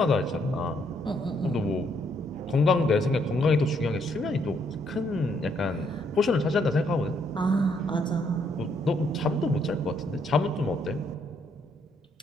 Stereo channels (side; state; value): both; normal; correlation 0.72